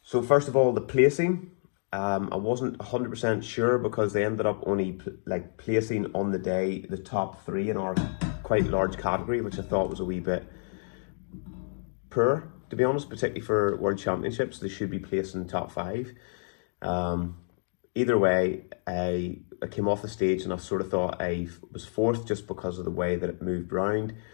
So first of all, the placing. I wasn't 100% sure because they ended up only placing on the day the top 3 in our quite large category, which I thought was a wee bit poor, to be honest, particularly for World Championships. They should be placed in the top 5. Either way, I came off the stage and I sort of thought I was 4th just because of the way that it moved round.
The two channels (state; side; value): silent; right; digital silence